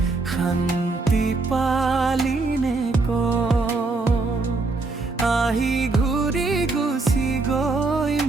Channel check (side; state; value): left; quieter; 3.6 dB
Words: শান্তি পালিনে আহি ঘূৰি গুচি গৈ